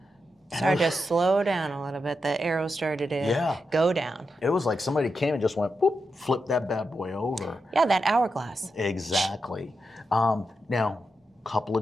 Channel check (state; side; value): normal; both; correlation 0.87